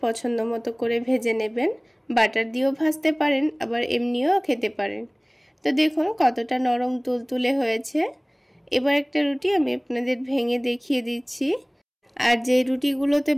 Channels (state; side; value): identical; both; correlation 1.00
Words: পছন্দ মতো করে ভেজে নেবেন, বাটার দিয়েও ভাজতে পারেন আবার এমনিও খেতে পারেন। তো দেখুন কতটা নরম তুলতুলে হয়েছে। এবার একটা রুটি আমি আপনাদের ভেঙে দেখিয়ে দিচ্ছি। আর যে রুটিগুলোতে